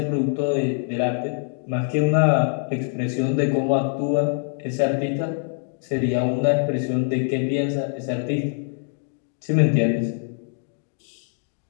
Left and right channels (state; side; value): silent; right; 63 dB below the other